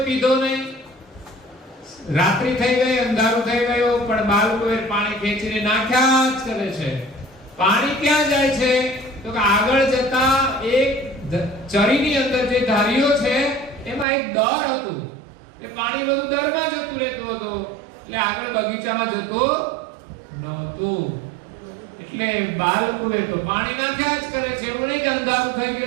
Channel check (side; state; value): left; drops out; at 14.1 s